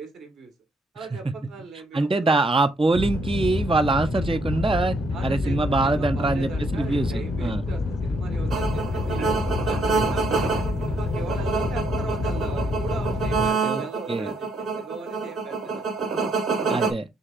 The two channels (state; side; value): normal; both; correlation 0.72